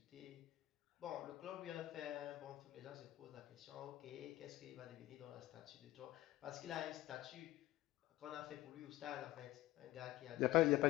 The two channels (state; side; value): quieter; right; 16.5 dB